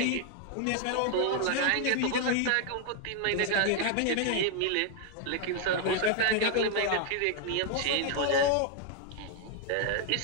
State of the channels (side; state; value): both; different; correlation 0.00